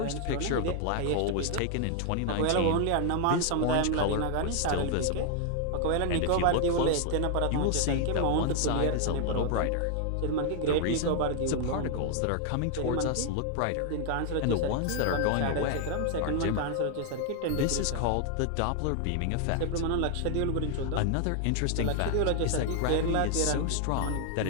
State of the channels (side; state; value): both; different; correlation 0.00